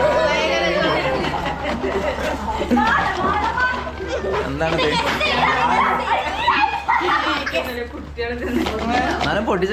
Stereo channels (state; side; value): identical; both; correlation 1.00